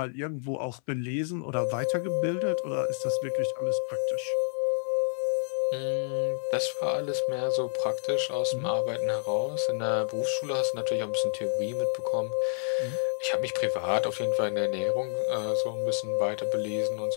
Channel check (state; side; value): silent; right; 59 dB below the other